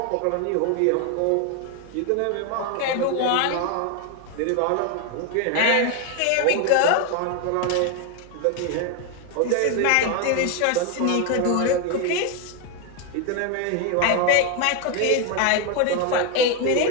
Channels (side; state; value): both; different; correlation 0.01